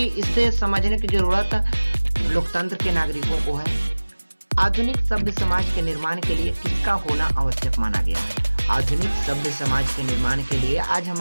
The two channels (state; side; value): inverted; both; correlation -1.00